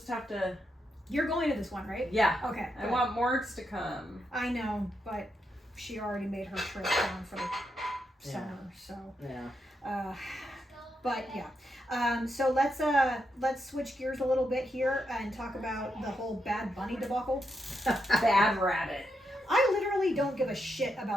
have to. You're going to this one, right? Yeah. Okay. I good. want Morgs to come. I know, but she already made her trip down for the summer, so. Yeah. But yeah. So let's switch gears a little bit here and talk about the whole Bad Bunny debacle. Bad rabbit. I literally don't give a shit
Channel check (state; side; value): normal; both; correlation 0.82